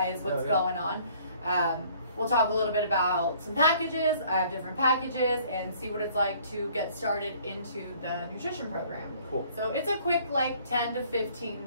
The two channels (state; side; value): inverted; both; correlation -0.57